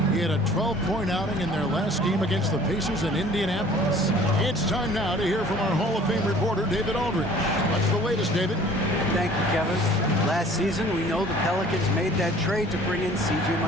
He had a 12-point outing in their last game against the Pacers in Indianapolis. It's time now to hear from our Hall of Fame reporter, David Aldridge. What's the latest, David? Thank you, Kevin. Last season, we know the Pelicans made that trade to bring in C.J.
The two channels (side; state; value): both; normal; correlation 0.51